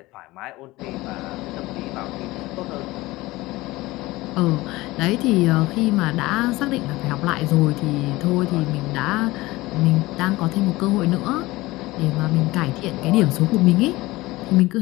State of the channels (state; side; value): quieter; right; 19.8 dB